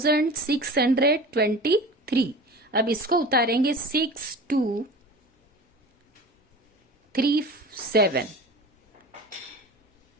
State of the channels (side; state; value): both; normal; correlation 0.36